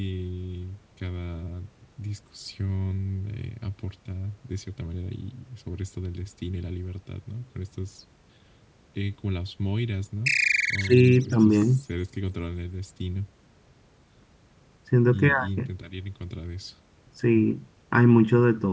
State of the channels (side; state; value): both; identical; correlation 1.00